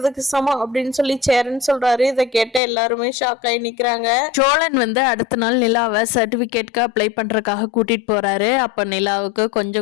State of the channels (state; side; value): drops out; right; at 2.6 s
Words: சமம் அப்படின்னு சொல்லி சேரன் சொல்கிறாரு. இதை கேட்ட எல்லாருமே ஷாக் ஆகி நிற்கிறாங்க. சோழன் வந்து அடுத்த நாள் நிலாவை சர்டிஃபிகேட்க்கு அப்ளை பண்ணுறதுக்காக கூட்டிகிட்டு போகிறாரு. அப்போ நிலாவுக்கு